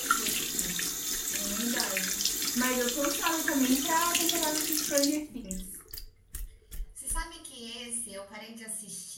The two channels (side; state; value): both; identical; correlation 1.00